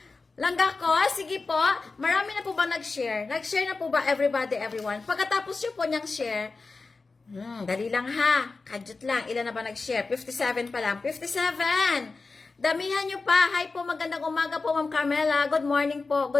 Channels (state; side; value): quieter; right; 4.0 dB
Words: Langga ko, sige po, marami na po ba nag-share? Nag-share na po ba everybody, everyone? Pagkatapos nyo po niyang share, dali lang ha, kadyot lang. Ilan na ba nag-share? 57 pa lang. 57! Damihan nyo pa. Hi po, magandang umaga po, Ma'am Carmela. Good morning po.